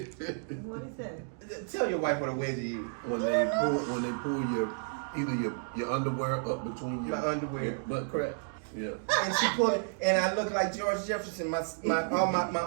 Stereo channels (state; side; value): silent; left; digital silence